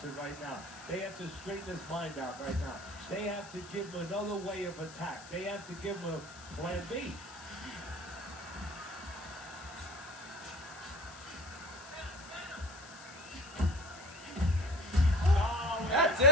in right now. They have to straighten his mind out right now. They have to give him another way of attack. They have to give him a plan B. That's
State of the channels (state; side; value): noise; left; hiss, 17 dB below the sound